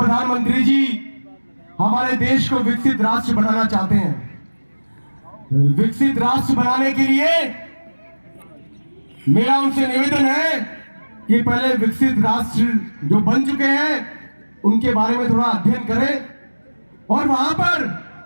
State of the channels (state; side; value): inverted; both; correlation -1.00